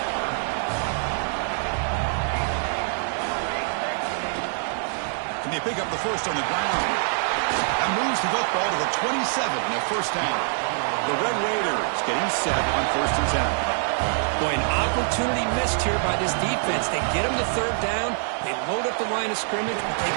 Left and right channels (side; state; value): left; silent; 62 dB below the other